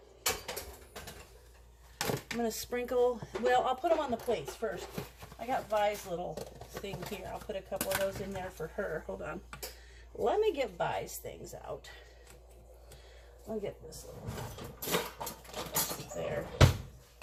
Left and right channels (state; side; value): identical; both; correlation 1.00